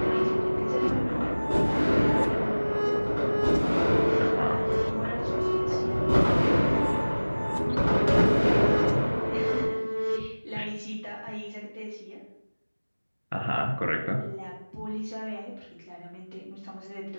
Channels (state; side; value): inverted; both; correlation -1.00